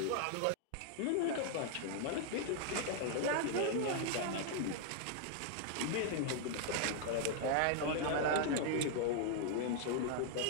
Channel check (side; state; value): both; different; correlation 0.00